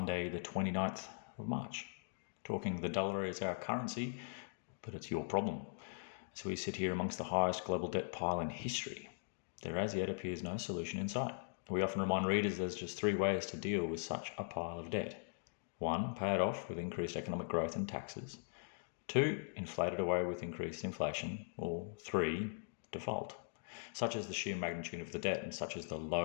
the 29th of March. Talking the dollar is our currency, but it's your problem. As we sit here amongst the highest global debt pile in history, there as yet appears no solution in sight. We often remind readers there's just three ways to deal with such a pile of debt. 1, pay it off with increased economic growth and taxes. 2, inflate it away with increased inflation. Or 3, default. Such is the sheer magnitude of the debt and such is the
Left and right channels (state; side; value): silent; right; digital silence